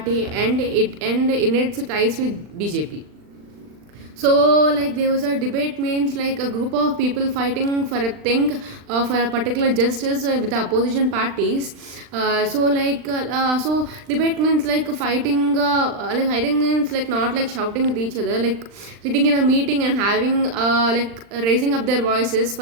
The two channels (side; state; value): left; late; 39 ms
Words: and in its ties with BJP. So like there was a debate means like a group of people fighting for a thing, for a particular justice with the opposition parties. So debate means like fighting, like fighting means like not like shouting at each other, like sitting in a meeting and having like raising up their voices